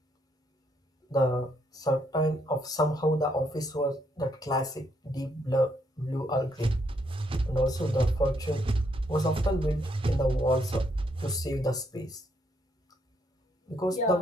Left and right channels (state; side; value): normal; both; correlation 0.74